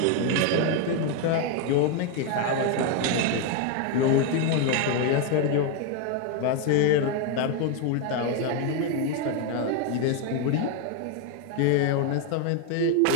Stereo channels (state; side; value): different; both; correlation 0.01